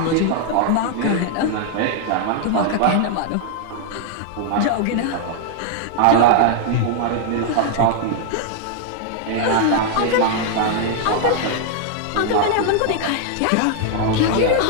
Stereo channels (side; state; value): both; different; correlation 0.00